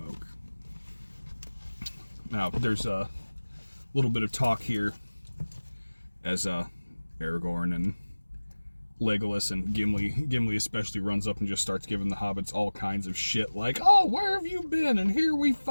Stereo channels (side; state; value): both; inverted; correlation -1.00